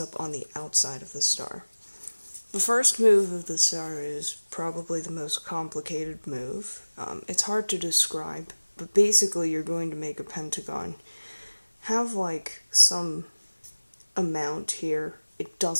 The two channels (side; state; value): both; inverted; correlation -1.00